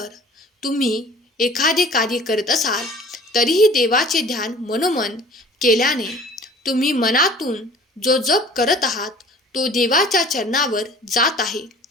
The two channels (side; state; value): both; normal; correlation 0.47